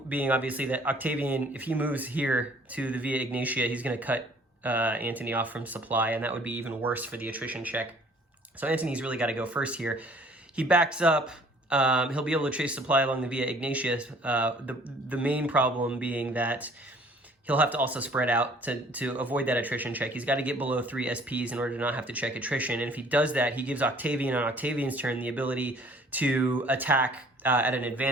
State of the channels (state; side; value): normal; both; correlation 0.55